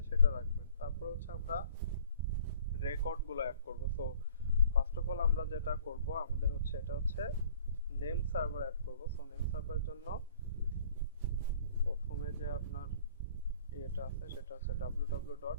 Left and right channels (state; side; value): inverted; both; correlation -0.52